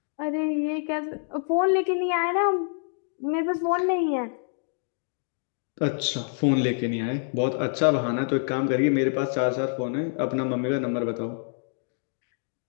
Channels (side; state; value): right; silent; digital silence